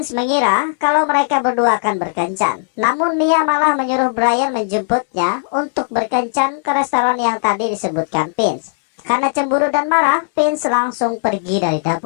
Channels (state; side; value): silent; right; digital silence